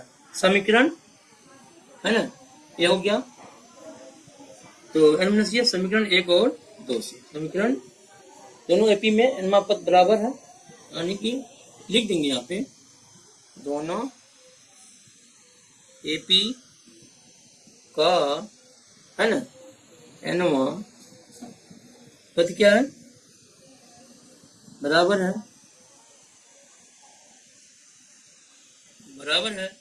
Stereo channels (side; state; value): both; identical; correlation 1.00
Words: समीकरण है ना, ये हो गया। तो ये समीकरण 1 और 2 से समीकरण दोनों एपी में n पद बराबर है, यानी कि लिख देंगे यहाँ पे दोनों एपी का, है ना, एनवा पद क्या है, बराबर है, बराबर है,